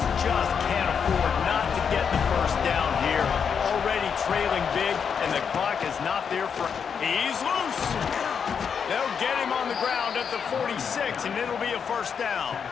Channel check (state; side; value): quieter; right; 6.8 dB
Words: just can't afford not to get the first down here. Already trailing big, and the clock is not there for... he's loose! They'll get him on the ground at the 46, and it'll be a first down.